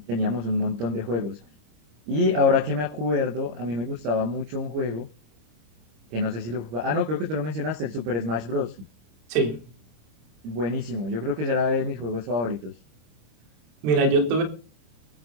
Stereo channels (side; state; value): left; late; 26 ms